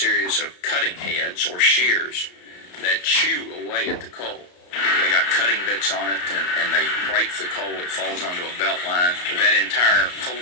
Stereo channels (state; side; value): late; right; 34 ms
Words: of cutting heads or shears that chew away at the coal. They got cutting bits on it, and they break the coal. It falls onto a belt line. That entire coal